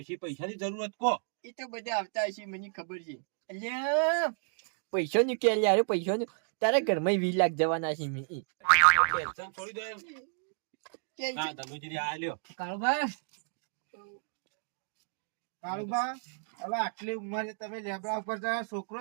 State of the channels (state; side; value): silent; left; digital silence